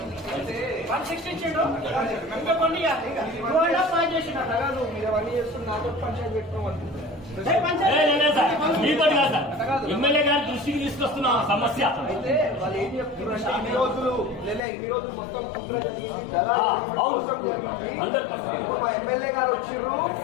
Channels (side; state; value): right; drops out; at 14.6 s